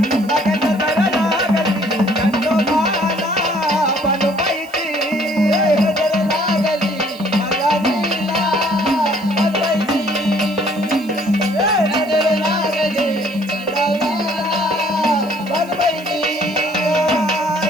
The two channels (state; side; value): noise; right; hiss, 23 dB below the sound